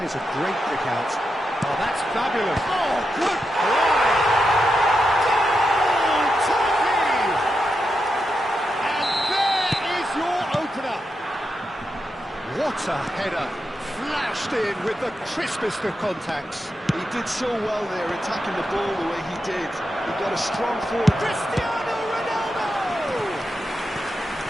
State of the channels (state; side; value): normal; both; correlation 0.86